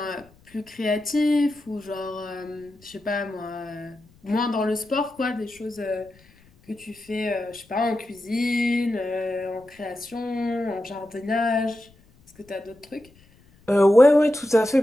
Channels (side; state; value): left; noise; rumble, 29 dB below the sound